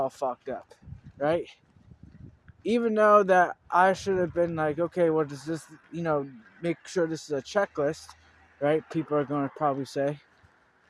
fucked up, right? Even though that I should have been like, okay, what does this, make sure this is a checklist, right? People are going to probably say.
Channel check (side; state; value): both; identical; correlation 1.00